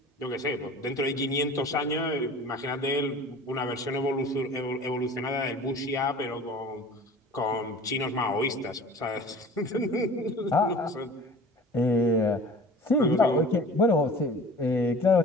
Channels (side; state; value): both; normal; correlation 0.43